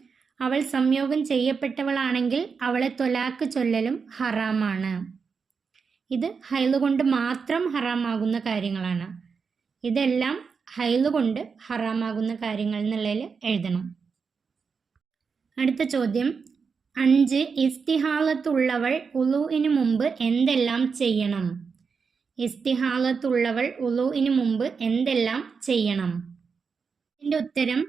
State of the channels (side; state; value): left; quieter; 5.5 dB